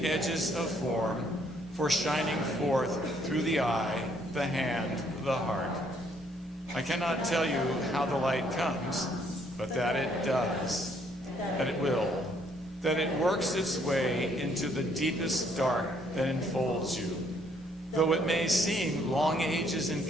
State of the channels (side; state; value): both; normal; correlation 0.67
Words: edges of form, for shining forth through the eye, the hand, the heart. I cannot tell you how the light comes, but that it does, that it will, that it works its way into the deepest dark that enfolds you, though it may seem long ages in